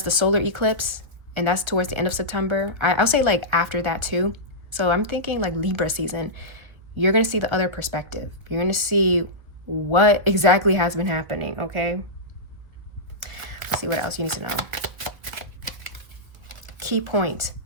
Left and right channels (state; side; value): late; left; 1.7 ms